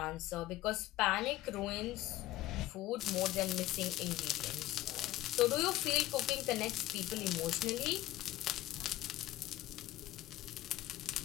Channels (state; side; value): quieter; right; 16.0 dB